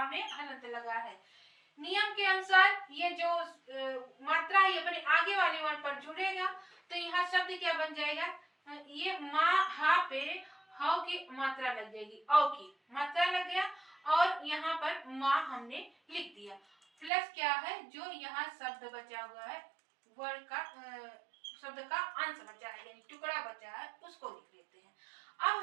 में हलंत लगा है। नियम के अनुसार ये जो मात्रा है अपने आगे वाले वर्ण पर जुड़ेगा, तो यहाँ शब्द क्या बन जाएगा, ये माँ हा पे हाउ की मात्रा लग जाएगी, औ की मात्रा लग गया और यहाँ पर माँ हमने लिख दिया। प्लस क्या है, जो यहाँ शब्द बचा हुआ है वर्ण का शब्द का अंश बचा है यानी टुकड़ा बचा है उसको लिख लेते हैं।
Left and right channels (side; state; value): left; drops out; at 17.1 s